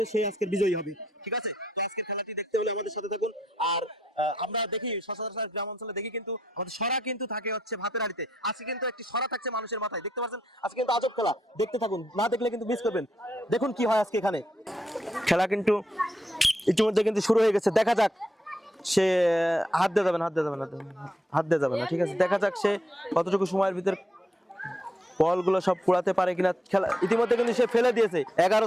সে আজকের বিজয়ী হবে। ঠিক আছে, তো আজকের খেলাটি দেখতে হলে আমাদের সাথে থাকুন। আর আমরা দেখি সচরাচর গ্রাম অঞ্চলে দেখি কিন্তু আমাদের সরা কিন্তু থাকে হচ্ছে ভাতের হাড়িতে, আজকে কিন্তু একটি সরা থাকছে মানুষের মাথায়। দেখতে পাচ্ছেন আজকে কিন্তু আজব খেলা, দেখতে থাকুন, না দেখলে কিন্তু মিস করবেন। দেখুন কি হয় আজকে এখানে। খেলা কিন্তু ইতিমধ্যে কিন্তু শুরু হয়ে গেছে, দেখা যাক সে হাত দিয়ে যাবে না। ঠিক আছে, দেখা যাক সে কতটুকু সময়ের ভিতর বলগুলো সব কুড়াতে পারে কিনা। খেলা ইতিমধ্যে কিন্তু সে ফেলে দিয়েছে। 11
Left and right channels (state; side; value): normal; both; correlation 0.78